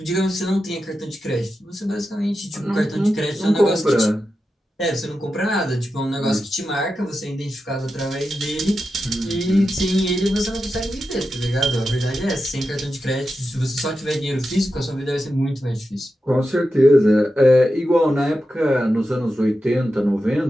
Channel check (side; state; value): both; normal; correlation 0.90